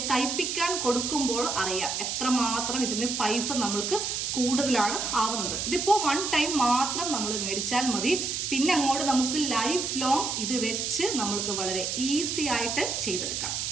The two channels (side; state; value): right; noise; hiss, 2 dB below the sound